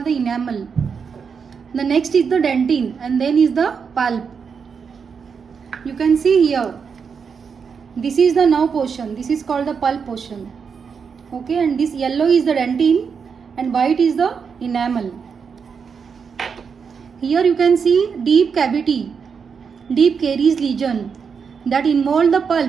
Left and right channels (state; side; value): quieter; left; 6.1 dB